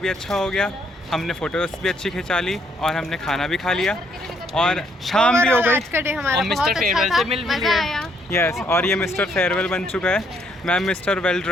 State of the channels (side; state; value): both; normal; correlation 0.70